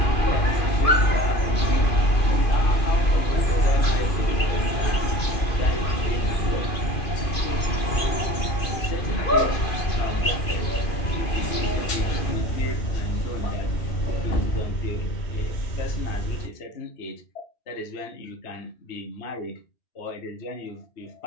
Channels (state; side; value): late; right; 2.4 ms